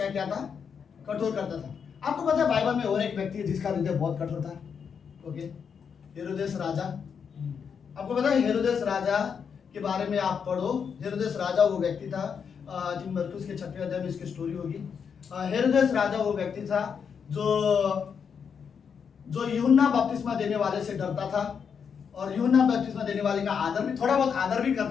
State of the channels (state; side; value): quieter; right; 6.7 dB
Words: किया था? कठोर करता था। आपको पता है बाइबल में और एक व्यक्ति है जिसका हृदय बहुत कठोर था। ओके, हेरोदेस राजा। आपको पता है हेरोदेस राजा के बारे में आप पढ़ो। हेरोदेस राजा वो व्यक्ति था, मरकुस के 6वें अध्याय में इसकी स्टोरी होगी। हेरोदेस राजा वो व्यक्ति था जो यूहन्ना बपतिस्मा देने वाले से डरता था, और यूहन्ना बपतिस्मा देने वाले का आदर भी, थोड़ा बहुत आदर भी